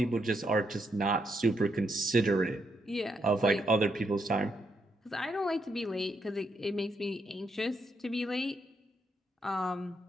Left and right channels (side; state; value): both; normal; correlation 0.78